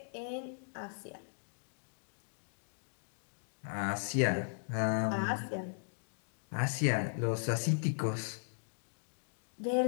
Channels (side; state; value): right; silent; digital silence